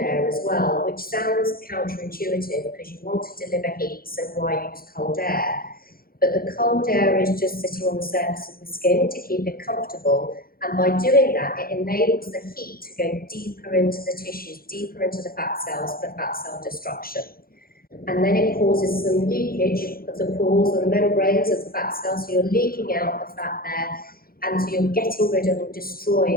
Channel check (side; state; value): right; late; 0.43 ms